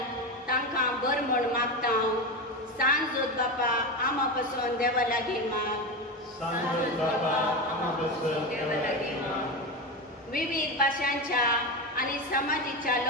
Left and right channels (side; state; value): both; normal; correlation 0.19